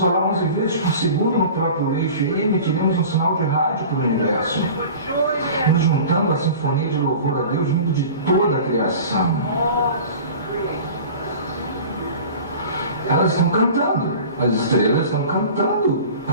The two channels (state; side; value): inverted; both; correlation -0.39